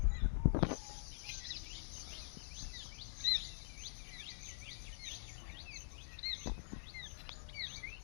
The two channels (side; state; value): right; silent; digital silence